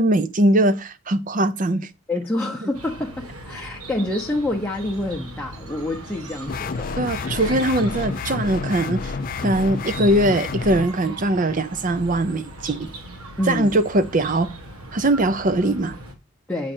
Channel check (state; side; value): normal; both; correlation 0.46